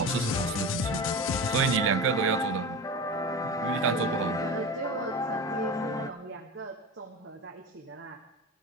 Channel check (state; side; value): normal; both; correlation 0.28